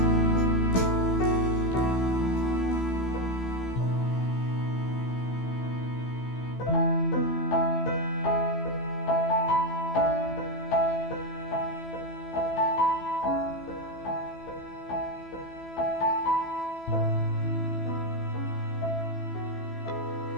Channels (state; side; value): late; right; 15 ms